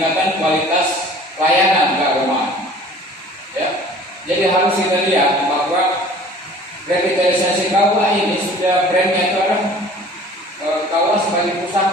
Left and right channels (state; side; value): normal; both; correlation 0.48